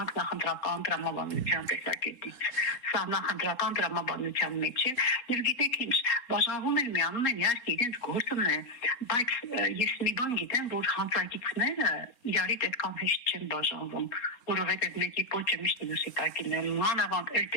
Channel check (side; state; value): right; late; 3.7 ms